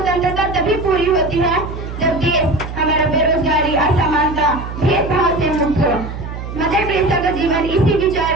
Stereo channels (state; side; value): noise; right; hum, 8 dB below the sound